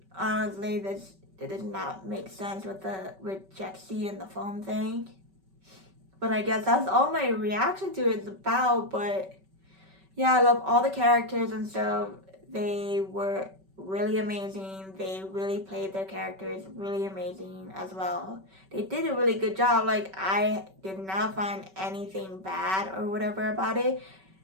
honestly, it does not make sense with Jexi and the phone thing. But I guess that's all my reaction to it's about. But yeah, I love all the characters and stuff. They were really amazing. They really played their characters really amazing as well. They did a really good job. Like, I did not find anything bad or whatever about it.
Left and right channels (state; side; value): late; left; 5.2 ms